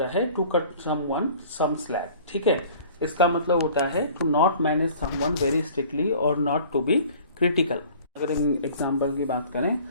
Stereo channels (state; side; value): inverted; both; correlation -0.49